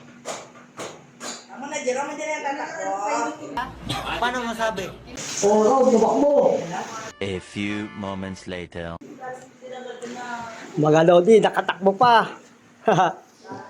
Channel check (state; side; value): identical; both; correlation 1.00